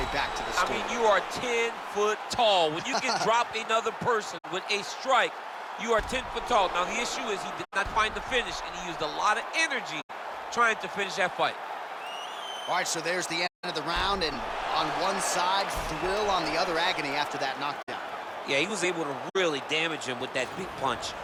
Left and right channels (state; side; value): identical; both; correlation 1.00